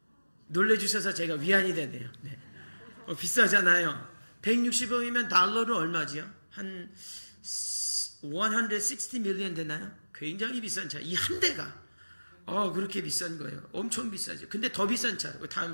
놀래주셔서 제가 위안이 되네요. 네. 비싸잖아요. 160억이면 달러로 얼마지요? 한 160 밀리언 되나요? 굉장히 비싼 차. 이 한 대가 그렇게 비싼 거예요. 엄청 비싸죠. 근데 더 비싼 차,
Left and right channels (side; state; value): both; inverted; correlation -1.00